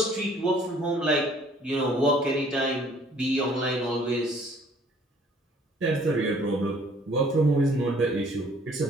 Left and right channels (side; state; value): both; normal; correlation 0.58